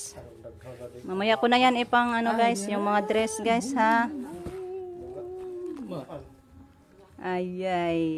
Mamaya ko na yan ipang guys, yung mga dress guys ha.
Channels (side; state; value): both; identical; correlation 1.00